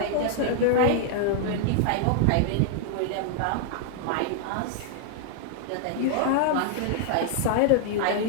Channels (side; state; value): both; different; correlation 0.00